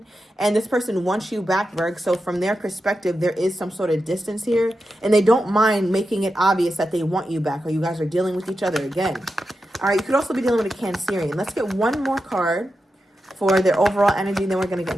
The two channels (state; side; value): normal; both; correlation 0.89